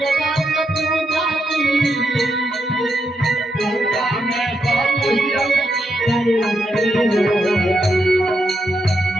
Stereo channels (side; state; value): both; normal; correlation 0.81